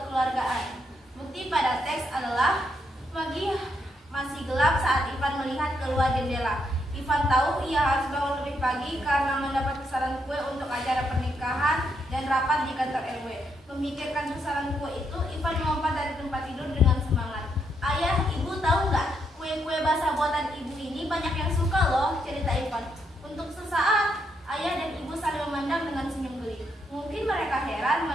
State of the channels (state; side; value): normal; both; correlation 0.78